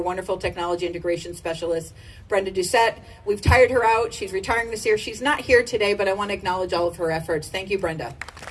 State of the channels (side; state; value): both; identical; correlation 1.00